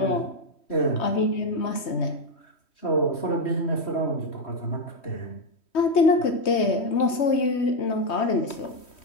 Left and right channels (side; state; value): right; late; 3.2 ms